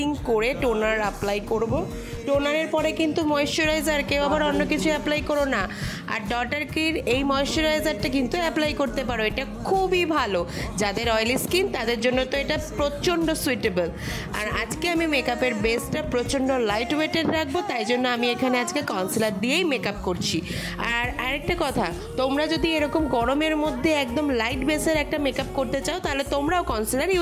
করে টোনার অ্যাপ্লাই করব। টোনারের পরে কিন্তু ময়েশ্চারাইজার, কেউ আবার অন্য কিছু অ্যাপ্লাই করো না। আর ডটার কির এই ময়েশ্চারাইজারটা কিন্তু অ্যাপ্লাই করতে পারো, এটা খুবই ভালো। যাদের অয়েলি স্কিন তাদের জন্য তো এটা প্রচণ্ড সুইটেবল। আর আজকে আমি মেকআপের বেসটা প্রচণ্ড লাইট ওয়েটেড রাখবো, তাই জন্য আমি এখানে আজকে কনসিলার দিয়েই মেকআপ করছি। আর আরেকটা কথা, তোমরা যদি এরকম গরমের মধ্যে একদম লাইট বেসের একটা মেকআপ করতে চাও তাহলে তোমরাও কনসিলার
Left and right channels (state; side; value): identical; both; correlation 1.00